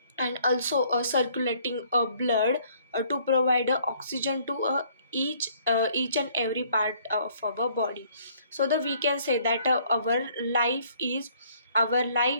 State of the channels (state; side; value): inverted; both; correlation -0.62